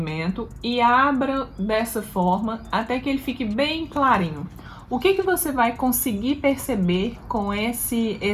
e abra dessa forma até que ele fique bem clarinho. O que você vai conseguir perceber com esse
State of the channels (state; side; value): identical; both; correlation 1.00